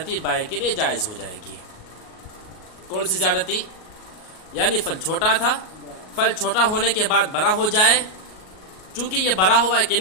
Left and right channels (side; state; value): right; late; 38 ms